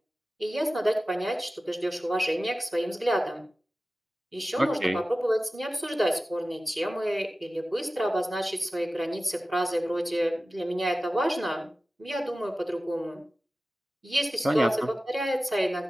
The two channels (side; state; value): both; normal; correlation 0.95